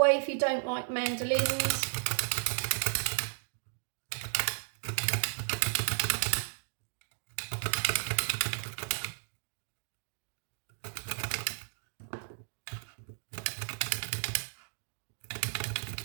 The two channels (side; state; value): left; silent; digital silence